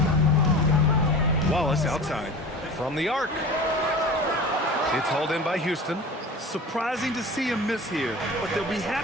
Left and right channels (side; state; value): both; normal; correlation 0.36